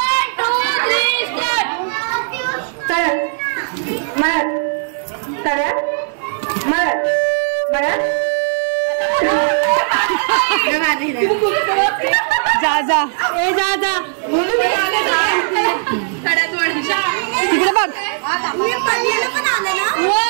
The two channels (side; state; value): left; silent; digital silence